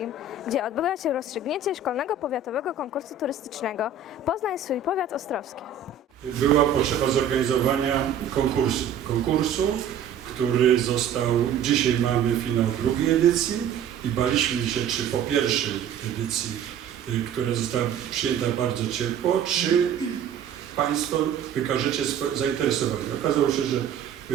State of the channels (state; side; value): quieter; left; 6.7 dB